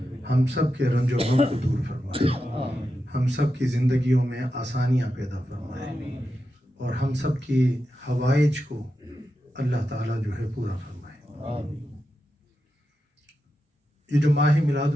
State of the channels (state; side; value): normal; both; correlation 0.89